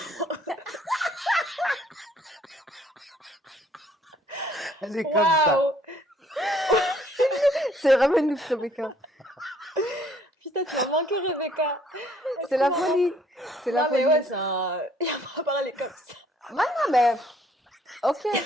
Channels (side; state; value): both; normal; correlation 0.62